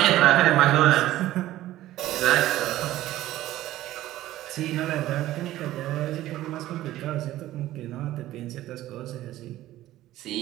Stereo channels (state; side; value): quieter; left; 14.9 dB